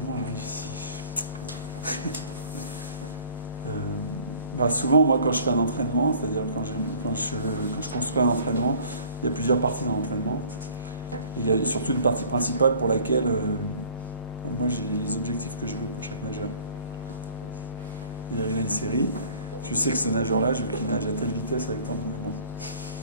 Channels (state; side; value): inverted; both; correlation -0.51